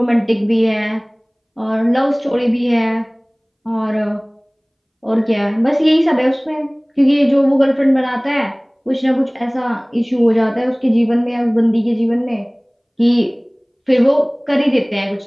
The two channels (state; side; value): identical; both; correlation 1.00